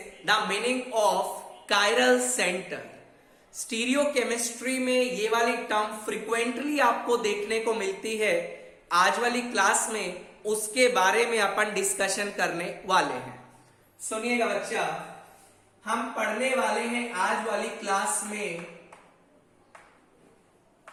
the meaning of chiral centre. Stereo chemistry में ये वाली टर्म फ्रिक्वेंटली आपको देखने को मिलती है। आज वाली क्लास में उसके बारे में अपन डिस्कशन करने वाले हैं। सुनिएगा बच्चा, हम पढ़ने वाले हैं आज वाली क्लास में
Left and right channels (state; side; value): identical; both; correlation 1.00